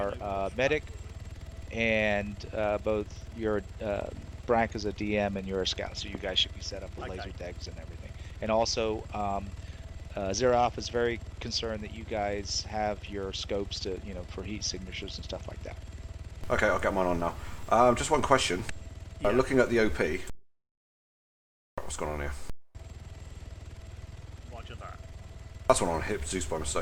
medic, and both your Brack is a DM and you're a scout. So you guys should be set up with laser degs and everything. And also, Zero Alpha is very concerned that you guys have your scopes to, for heat signatures and stuff like that. Okay, I'll get mine on now. Just one question. Looking at the OP. What's going on here? Roger that. That's one on hit Zeus by mistake.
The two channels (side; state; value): both; identical; correlation 1.00